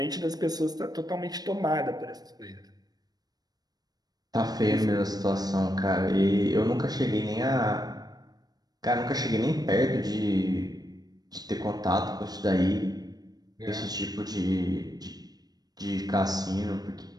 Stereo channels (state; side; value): late; left; 0.19 ms